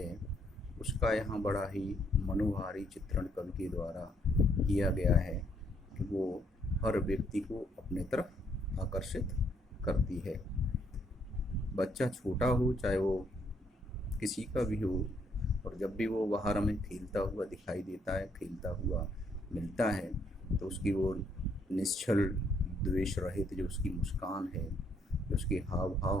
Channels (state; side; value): normal; both; correlation 0.70